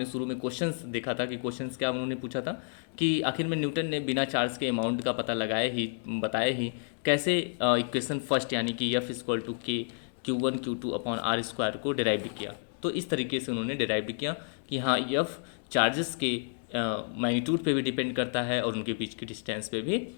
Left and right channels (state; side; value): silent; right; digital silence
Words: शुरू में क्वेश्चंस देखा था कि क्वेश्चंस क्या उन्होंने पूछा था कि आखिर में न्यूटन ने बिना चार्ज के अमाउंट का पता बताया ही कैसे इक्वेशन फर्स्ट यानी कि F=K Q1 Q2/r² को डिराइव किया। तो इस तरीके से उन्होंने डिराइव किया कि हाँ, F चार्जेस के मैग्नीट्यूड पे भी डिपेंड करता है और उनके बीच की डिस्टेंस पे भी